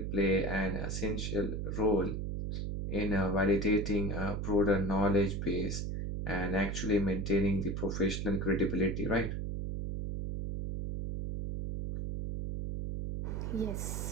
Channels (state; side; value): noise; right; hum, 3 dB below the sound